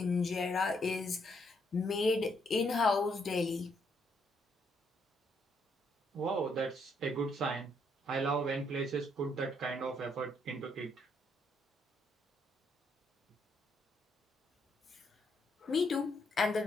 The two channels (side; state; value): both; normal; correlation 0.73